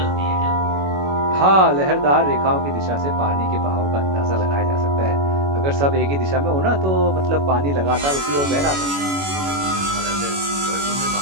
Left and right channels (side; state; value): left; late; 21 ms